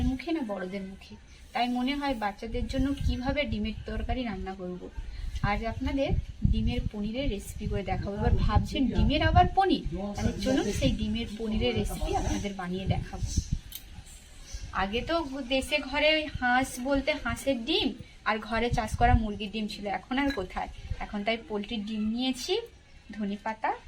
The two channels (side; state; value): both; identical; correlation 1.00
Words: মুখে না বড়দের মুখে। তাই মনে হয় বাচ্চাদের জন্য কিভাবে ডিমের তরকারি রান্না করব। আজ আপনাদের ডিমের পনিরের রেসিপি করে দেখাবো। এবার ভাবছেন ডিমের আবার পনির, তাহলে চলুন সেই ডিমের পনিরের রেসিপি আপনাদের বানিয়ে দেখাবো। আগে তো দেশে ঘরে হাঁস বলতে হাঁসের ডিম আর ঘরে চাষ করা মুরগির ডিম ছিল, এখন আর কোথায়। এখন তাই পোলট্রির ডিম নিয়েছি, ধনেপাতা,